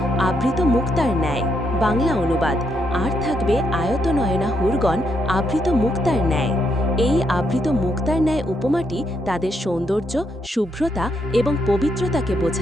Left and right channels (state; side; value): normal; both; correlation 0.77